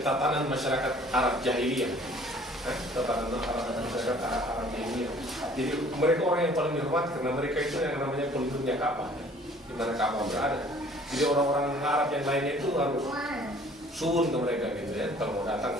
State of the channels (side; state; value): both; normal; correlation 0.54